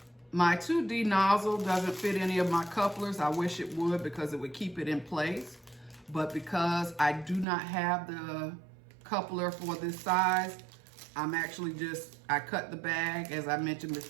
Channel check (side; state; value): left; drops out; at 7.5 s